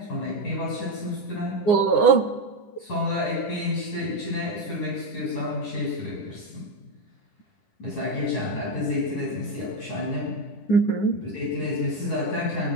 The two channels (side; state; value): right; late; 10 ms